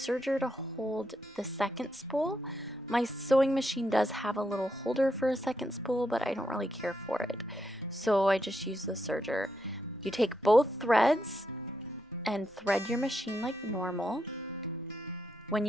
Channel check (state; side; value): normal; both; correlation 0.81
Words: to hold the second spool. My sewing machine does have a little holder for a second spool, but I don't really care for it. So I just use the serger. You take both threads and thread your machine like normal. When